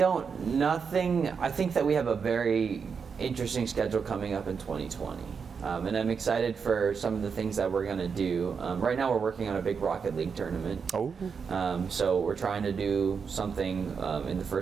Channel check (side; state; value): left; quieter; 6.0 dB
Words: think that we have a very interesting schedule coming up in 2020. And I'm excited for some of the things that we're going to do. Right now we're working on a big Rocket League tournament. Oh. So we're trying to do something in the